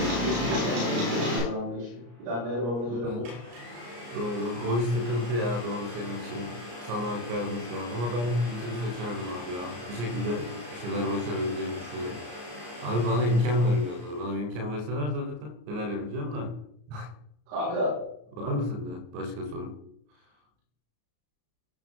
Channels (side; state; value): left; late; 34 ms